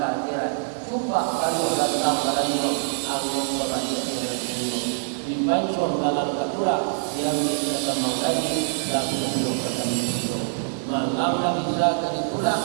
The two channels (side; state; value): left; silent; 62 dB below the other